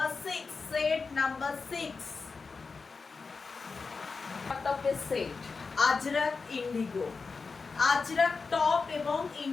6, সেট নাম্বার 6 টপের set Ajrak Indigo, Ajrak top এবং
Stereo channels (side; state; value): right; quieter; 4.6 dB